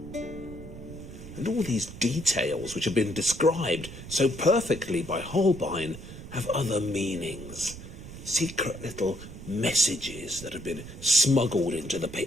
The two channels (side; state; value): right; noise; rumble, 13 dB below the sound